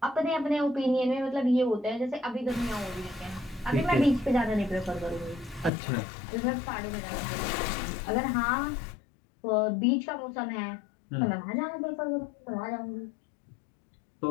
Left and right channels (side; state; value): right; drops out; at 5.7 s